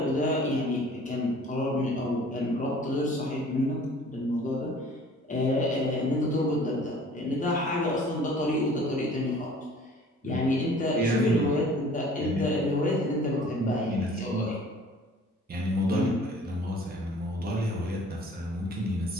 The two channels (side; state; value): both; normal; correlation 0.50